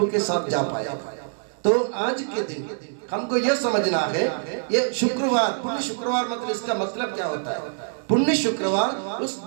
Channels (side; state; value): left; silent; digital silence